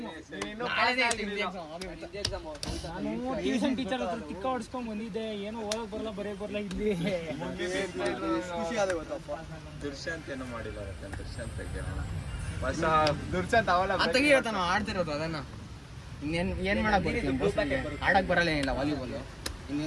ನಾನು ಟ್ಯೂಷನ್ ಟೀಚರ್ ಹತ್ರ ಟಿಕ್ಕ ಹೊಡ್ಸ್ಕೊಂಡ್ ಬಂದಿದ್ದೆ ಏನೋ ಓದಕ್ ಬರಲ್ಲ ಬರೆಯಕ್ ಬರಲ್ಲ ಹಿಂದಿ ಖುಷಿ ಆದ ಗೊತ್ತಪ್ಪ ದುರ್ಶಾಂತ್ ಏನೋ ಮಾಡಿದ್ದಾರೆ ದುರ್ಶಾಂತ್ ಹೊಸ ದುರ್ಶಾಂತ್ ಅವಳ ತೆಗಿಯತ್ತ ನಾವು ಆಡ್ತಿರೋದು ಅದನ್ನ ಇನ್ನೇನ್ ಏನ್ ಮಾಡಕ್ ಬರ್ತೀನಿ ಆಡಕ್ ಬರಲ್ಲ ಏನಿಲ್ಲ ವಾಲಿಬಾಲ್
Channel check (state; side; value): identical; both; correlation 1.00